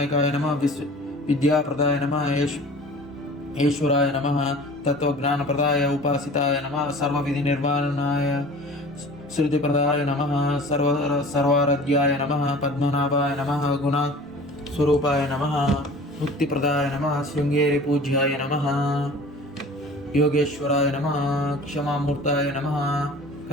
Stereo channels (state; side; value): normal; both; correlation 0.43